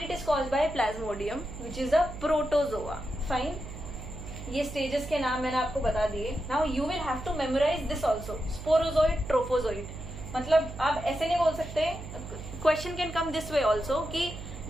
it is caused by plasmodium which is a protozoa. Fine, ये स्टेजेस के नाम मैंने आपको बता दिए। Now you will have to memorise this also, sporozoite, trophozoite. मतलब आप ऐसे नहीं बोल सकते, question can come this way also कि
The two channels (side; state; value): right; noise; hum, 11 dB below the sound